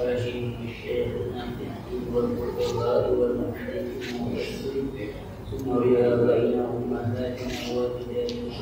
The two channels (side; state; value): both; identical; correlation 1.00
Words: وشيخنا في الدين والفقهاء والمحدثين ثم رياضينا أمهاتنا